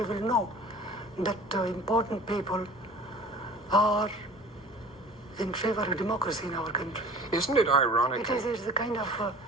will know that important people are in favor of democracy in our country. Isn't it ironic? It's the kind of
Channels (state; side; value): normal; both; correlation 0.45